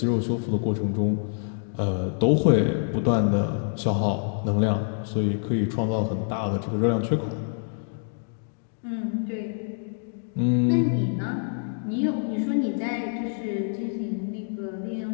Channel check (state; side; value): silent; right; digital silence